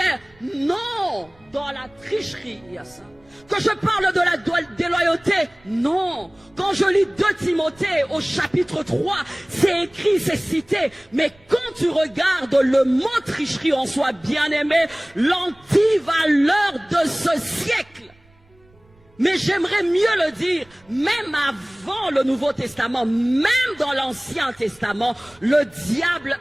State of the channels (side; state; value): right; noise; rumble, 30 dB below the sound